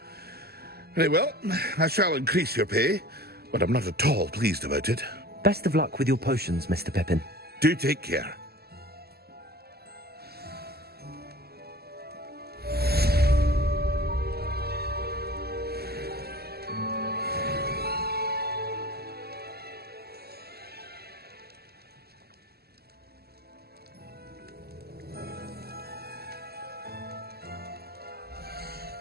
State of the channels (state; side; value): late; left; 0.46 ms